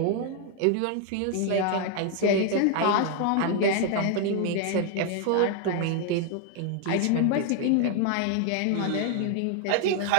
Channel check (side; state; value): both; different; correlation 0.00